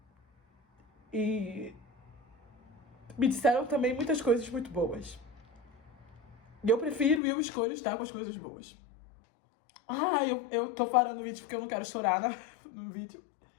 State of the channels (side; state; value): right; drops out; at 7.2 s